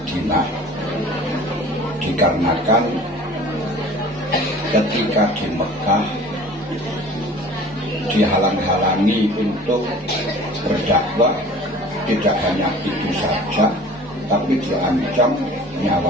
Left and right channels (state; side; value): normal; both; correlation 0.44